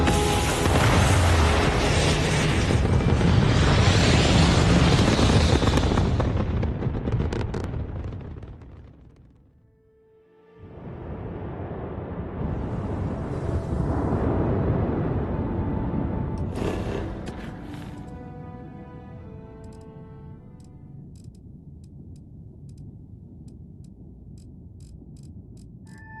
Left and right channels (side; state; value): both; identical; correlation 1.00